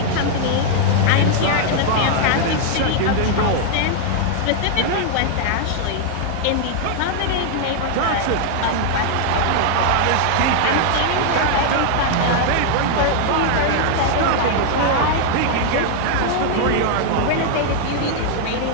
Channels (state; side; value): different; both; correlation 0.00